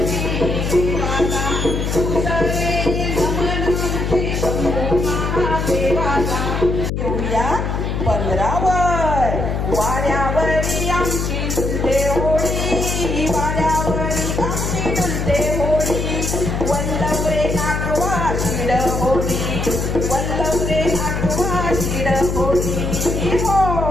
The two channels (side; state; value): left; noise; hum, 1 dB below the sound